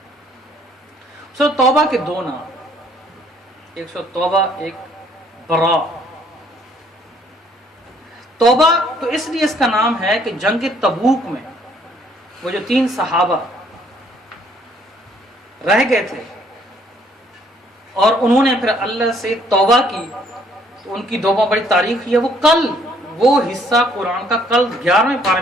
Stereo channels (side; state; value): both; normal; correlation 0.64